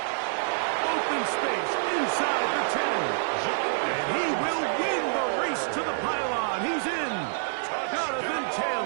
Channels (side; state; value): left; silent; digital silence